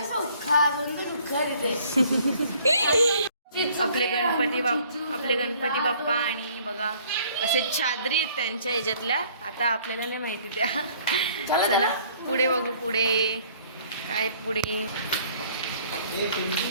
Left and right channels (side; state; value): both; inverted; correlation -0.58